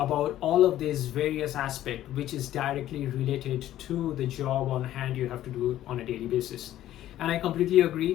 all of these various aspects which is directly related to the job on hand you have to do on a daily basis. And I completely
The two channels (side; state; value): right; quieter; 13.1 dB